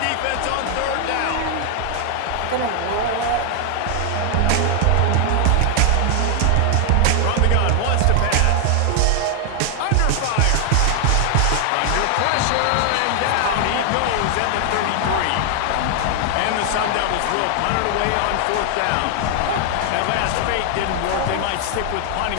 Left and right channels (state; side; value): different; both; correlation 0.00